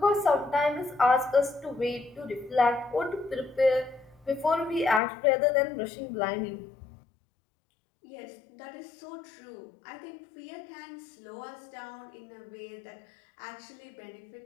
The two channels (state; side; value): drops out; right; at 5.0 s